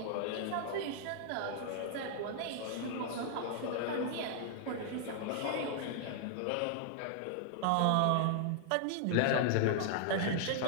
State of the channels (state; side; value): different; both; correlation 0.00